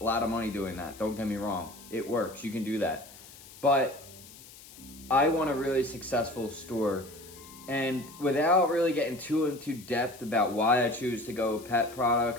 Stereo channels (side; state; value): left; noise; hiss, 19 dB below the sound